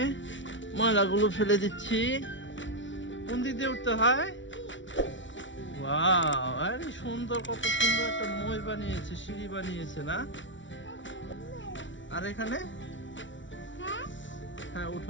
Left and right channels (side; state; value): right; late; 0.55 ms